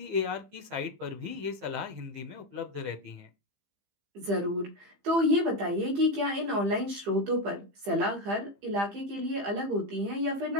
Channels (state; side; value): late; left; 15 ms